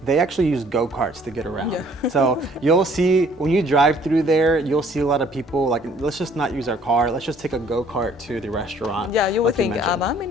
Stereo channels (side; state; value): both; normal; correlation 0.59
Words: actually use go-karts to get around. So you'll see, when you drive through there, you'll see a lot of people like, let's just not use our car, let's just take a go-kart to the restaurant. Yeah, you would think, I'm in